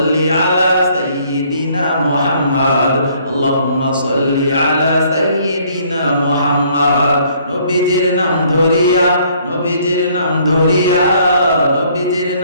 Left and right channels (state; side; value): inverted; both; correlation -0.62